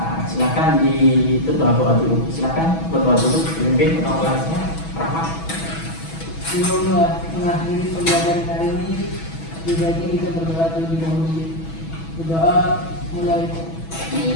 silakan berdoa dulu. Silakan berdoa dulu, pimpin ketua kelasnya, Rahmat. Sebelum mengakhiri pembelajaran hari ini, sebaiknya kita berdoa terlebih dahulu. Berdoa mulai.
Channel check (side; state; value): right; late; 6.1 ms